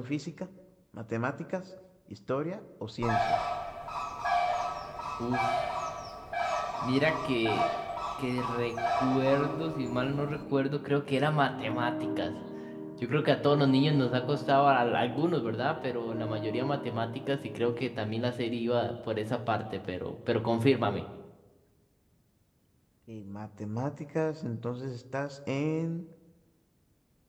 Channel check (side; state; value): both; identical; correlation 1.00